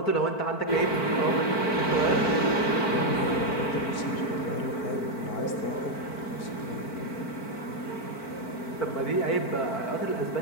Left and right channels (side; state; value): right; late; 4.5 ms